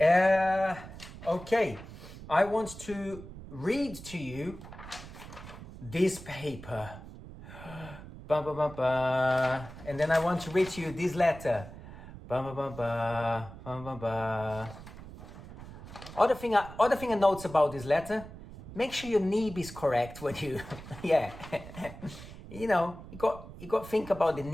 okay, I want to read to you this paper. Ba, ba, ba, ba. And then I want to read to you this letter. Ba, ba, ba, ba, ba, ba, ba. Other thing I notes about this letter, make sure your nib is correct when you, yeah. You know, you got to think about the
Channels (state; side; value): noise; right; rumble, 14 dB below the sound